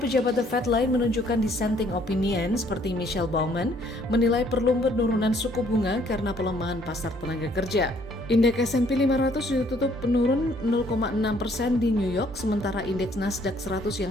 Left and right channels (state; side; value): normal; both; correlation 0.63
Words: The Fed lain menunjukkan dissenting opinion seperti Michelle Bowman menilai perlu penurunan suku bunga karena pelemahan pasar tenaga kerja. Indeks S&P 500 ditutup menurun 0,6% di New York, sementara indeks Nasdaq 100